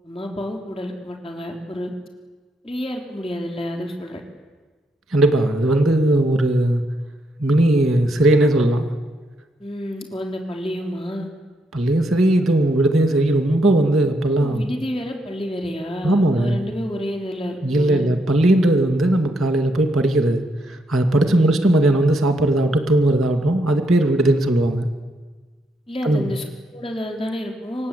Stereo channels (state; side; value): normal; both; correlation 0.77